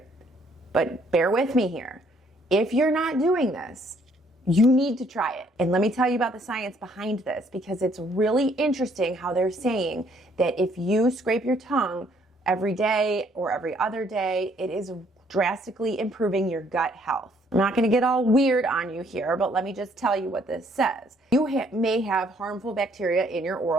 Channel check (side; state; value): both; normal; correlation 0.65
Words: but bear with me here. If you're not doing this, you need to try it. And let me tell you about the science behind this because it's really interesting how they're saying that if you scrape your tongue every day or every other day, it is drastically improving your gut health. I'm not going to get all weird on you here, but let me just tell you what this says. You may have harmful bacteria in your